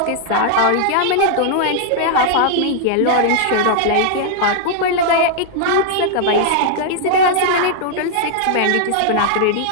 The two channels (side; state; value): both; different; correlation -0.01